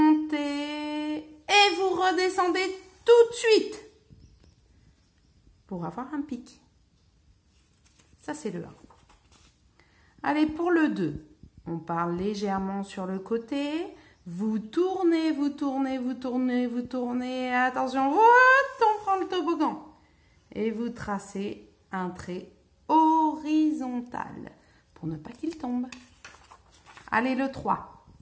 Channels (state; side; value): identical; both; correlation 1.00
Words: et vous redescendez tout de suite pour avoir un pic. Ça c'est le 1. Allez, pour le 2. On part légèrement sur le côté. Vous tournez, vous tournez, vous tournez, vous tournez. Attention, on prend le toboggan. Et vous tracez un trait horizontal pour ne pas qu'il tombe. Allez, le 3.